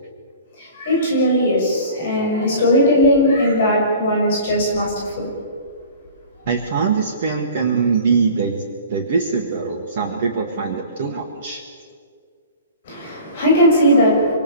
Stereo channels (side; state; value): both; inverted; correlation -0.43